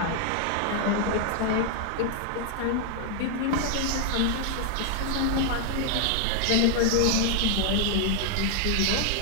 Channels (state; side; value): different; both; correlation 0.00